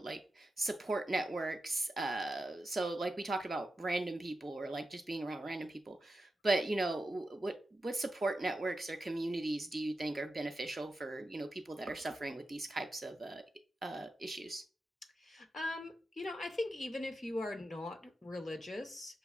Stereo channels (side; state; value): both; normal; correlation 0.90